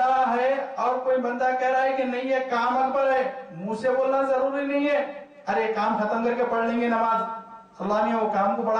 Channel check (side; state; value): both; identical; correlation 1.00